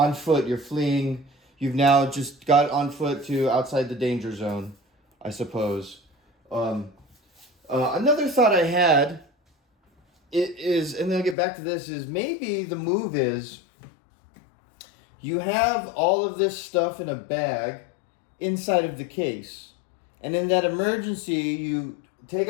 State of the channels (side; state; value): right; drops out; at 11.4 s